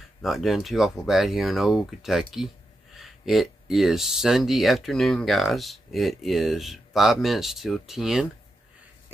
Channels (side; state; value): both; normal; correlation 0.87